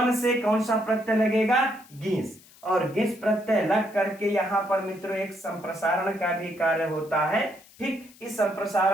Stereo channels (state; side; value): noise; left; hiss, 25 dB below the sound